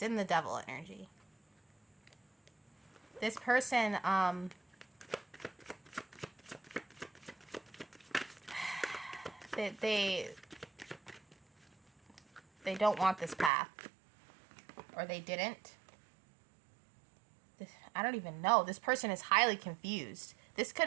in the devil energy. This person, they don't want this path. Or they didn't. I don't even know. This person is highly confused. This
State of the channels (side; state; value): left; drops out; at 13.5 s